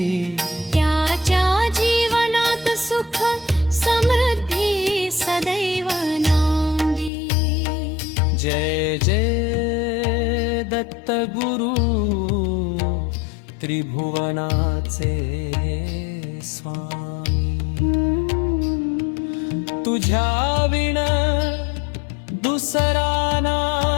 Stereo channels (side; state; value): right; drops out; at 7.1 s